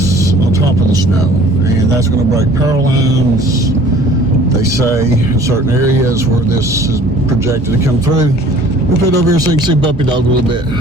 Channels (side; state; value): both; normal; correlation 0.51